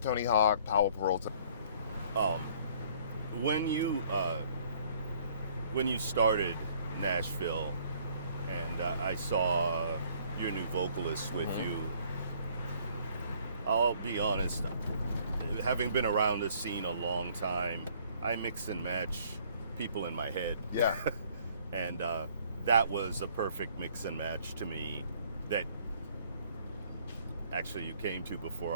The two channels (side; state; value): both; inverted; correlation -0.60